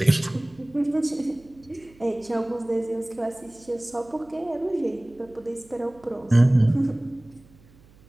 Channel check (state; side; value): noise; right; hum, 27 dB below the sound